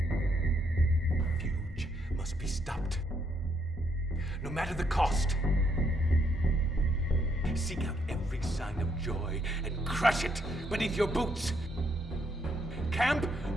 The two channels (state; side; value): normal; both; correlation 0.73